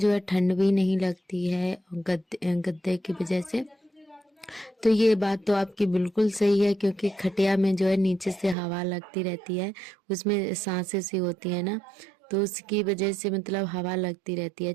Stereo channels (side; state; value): left; drops out; at 8.6 s